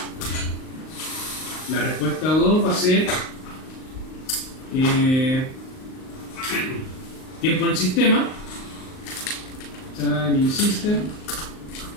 La respuesta 2 va a ser tiempo en el sistema, time in system,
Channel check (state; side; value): late; right; 38 ms